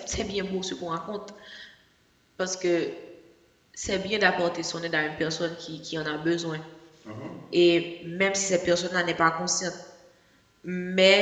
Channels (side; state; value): both; identical; correlation 1.00